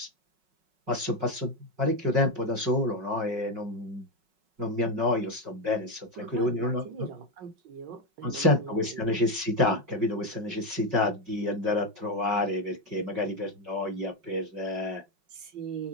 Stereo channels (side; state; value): left; late; 5.4 ms